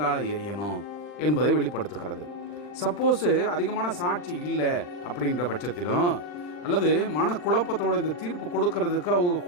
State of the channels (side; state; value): right; late; 40 ms